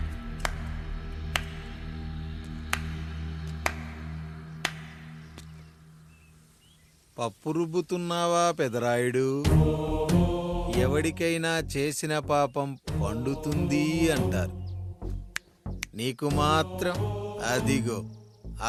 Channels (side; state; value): both; identical; correlation 1.00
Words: పప్పు రుబ్బుతున్నావా పెదరాయుడు? ఎవడికైనా చేసిన పాపం పండుతుంది అంటారు. నీకు మాత్రం అదిగో